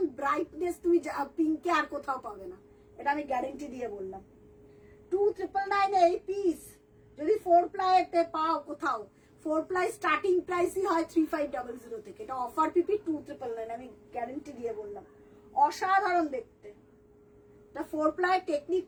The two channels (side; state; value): both; identical; correlation 1.00